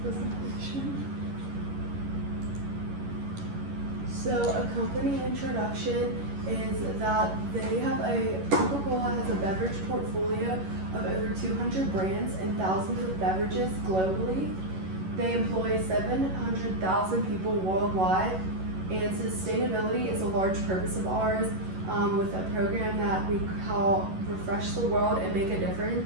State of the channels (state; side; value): late; left; 11 ms